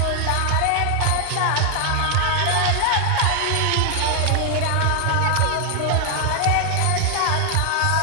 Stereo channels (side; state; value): both; different; correlation 0.00